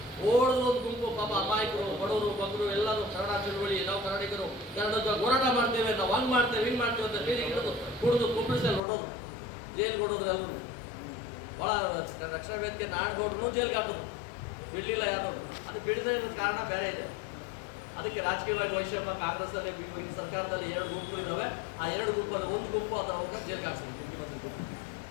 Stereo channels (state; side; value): drops out; right; at 8.8 s